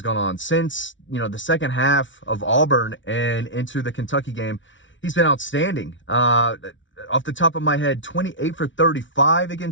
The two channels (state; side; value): late; right; 0.56 ms